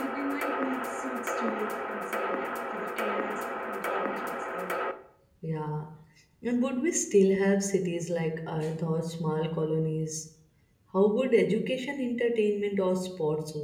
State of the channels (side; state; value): both; identical; correlation 1.00